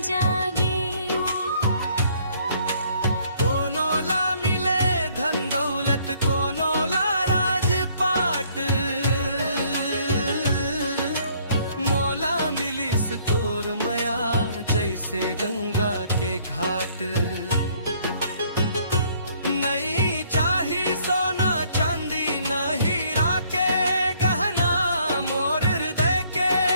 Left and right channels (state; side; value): inverted; both; correlation -0.63